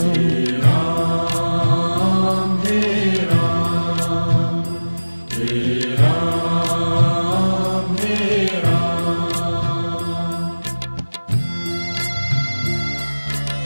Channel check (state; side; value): inverted; both; correlation -1.00